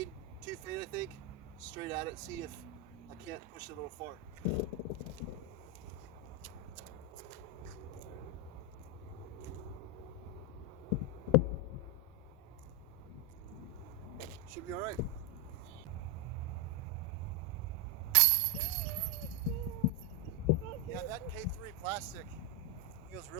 2 fade I think, straight at it, see if I can't push it a little far. Should be all right. Yeah, that K3 plastic feels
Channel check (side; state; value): both; normal; correlation 0.05